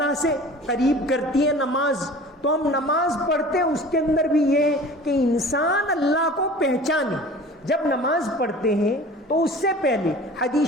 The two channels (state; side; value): normal; both; correlation 0.42